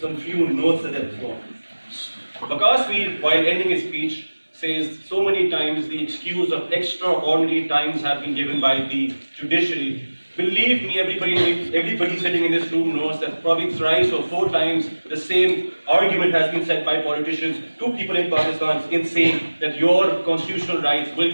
some few notes that they've formed. Waqas Mir, while ending his speech, says so many times the excuse of extraordinary times have been given by the judiciary. Believe me, everybody sitting in this room knows that probably thrice or 4 times the same argument has been said by politicians to people in Pakistan in saying that your constitutional rights will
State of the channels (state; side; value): inverted; both; correlation -1.00